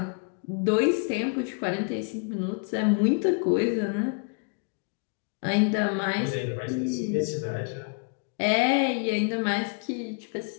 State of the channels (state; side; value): quieter; right; 37.9 dB